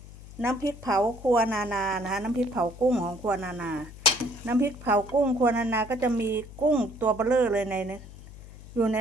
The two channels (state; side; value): noise; left; hum, 17 dB below the sound